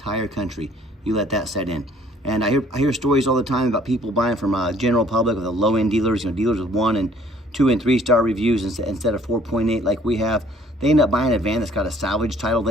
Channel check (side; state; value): both; normal; correlation 0.58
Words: country. You let that set in. And I hear stories all the time about people buying from general public, with the low-end dealers, dealers with 1 and 2 and 3 star reviews instead of 4.8 like we have. They end up buying a van that's got a salvage title